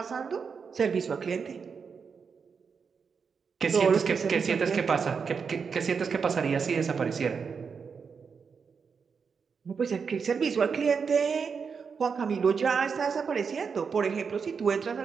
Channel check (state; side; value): quieter; left; 5.8 dB